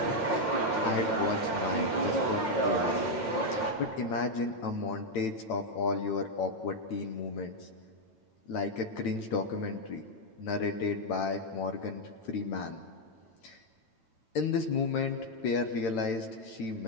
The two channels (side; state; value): right; late; 9.0 ms